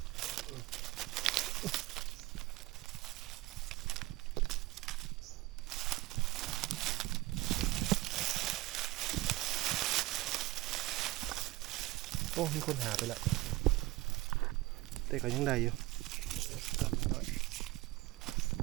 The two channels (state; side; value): quieter; left; 18.5 dB